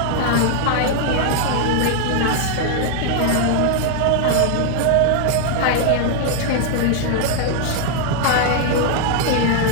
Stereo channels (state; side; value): different; both; correlation 0.00